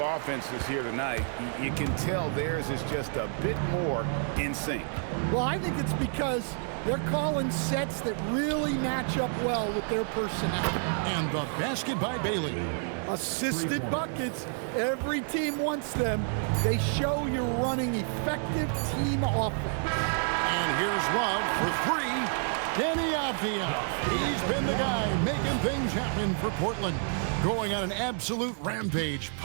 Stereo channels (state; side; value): silent; left; 58 dB below the other